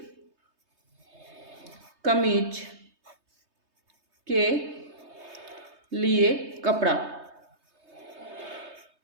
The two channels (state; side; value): late; left; 3.2 ms